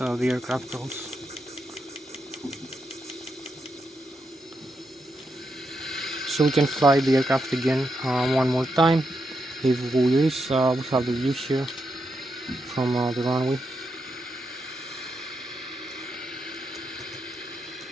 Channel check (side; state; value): both; normal; correlation 0.83